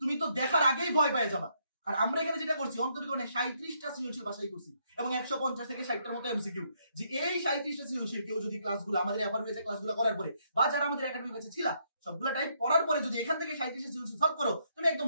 তো দেখার আগেই ভয় পেয়ে যাবা। আর আমরা এখানে যেটা করছি অন্তরীকরণে 37টা সৃজনশীল বাছাই করছি এবং 150 থেকে 60টার মতো এমসিকিউ, যে এই 37টা সৃজনশীল কেউ যদি ক্লাসগুলো আমাদের এফআর হয়েছে ক্লাসগুলো করার পরে বা যারা আমাদের একাডেমি কাছে ছিল সবগুলা টাইপ পড়ার পরে যদি এখান থেকে 37টা সৃজনশীল সলভ করো, তুমি একদম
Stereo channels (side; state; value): both; inverted; correlation -0.73